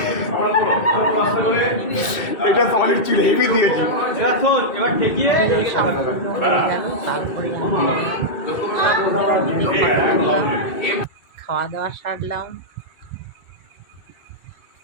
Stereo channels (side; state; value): right; late; 2.2 ms